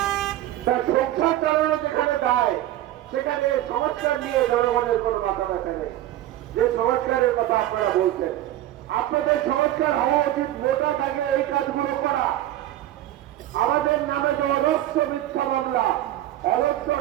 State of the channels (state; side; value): quieter; left; 14.0 dB